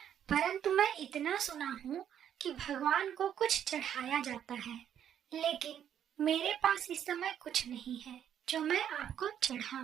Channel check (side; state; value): left; quieter; 9.6 dB